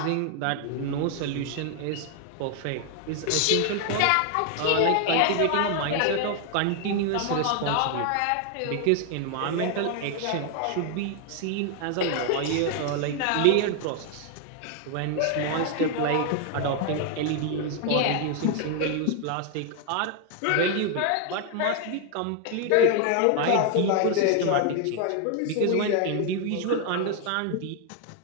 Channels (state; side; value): different; both; correlation 0.00